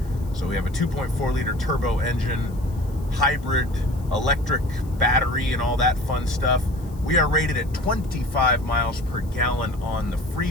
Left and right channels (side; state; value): left; noise; hiss, 26 dB below the sound